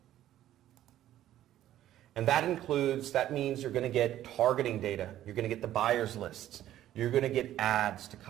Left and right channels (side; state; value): left; quieter; 12.8 dB